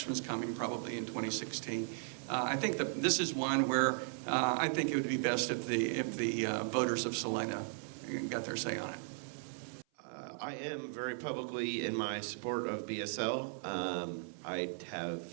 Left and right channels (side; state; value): left; silent; 53 dB below the other